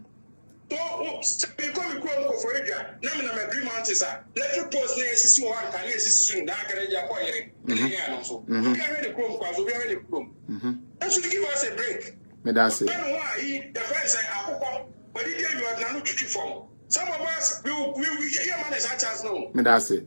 Become for area. Name an agreement is electric post near system one can soon. That can that should give us a break. That's it. The friends say, but you are not to form. Some of us will hear money such as no. That's it.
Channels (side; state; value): both; inverted; correlation -1.00